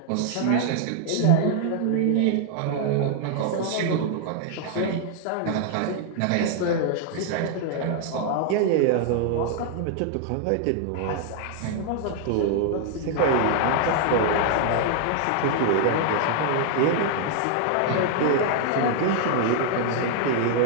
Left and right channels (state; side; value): different; both; correlation -0.01